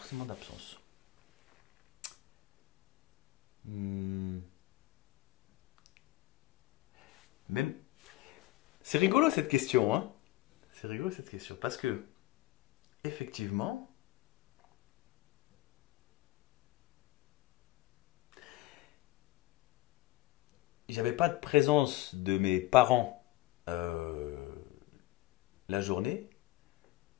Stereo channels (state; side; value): quieter; right; 17.8 dB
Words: d'absence. Hmm, Même, c'est rigolo cette question, hein. C'est rigolo cette question parce que effectivement, j'avais pas de présence de mes parents euh, la journée.